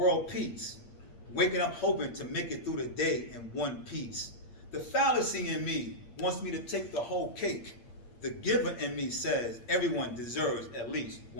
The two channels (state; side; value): late; right; 8.7 ms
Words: peace, waking up hoping to make it through the day in one piece. The fallacy in me wants me to take the whole cake. The giver in me says everyone deserves at least